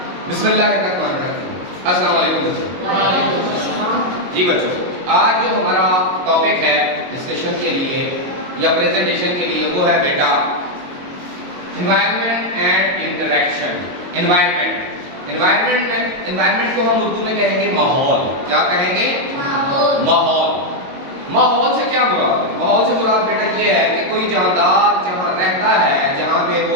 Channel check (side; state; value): left; late; 22 ms